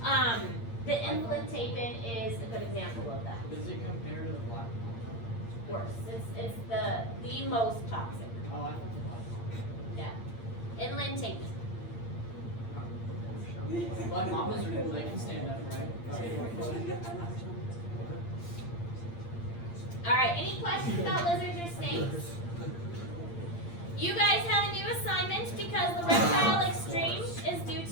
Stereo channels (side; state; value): right; late; 8.7 ms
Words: The inland tapir is a good example of that. Does it compare to the black mamba? Worse. It's the most toxic. Oh, I thought the black mamba. Yeah. Inland tapir. Black mambas are cool. They can stand up, right? All right, any questions about lizards or snakes? You guys have a new assignment because the reptile extreme is due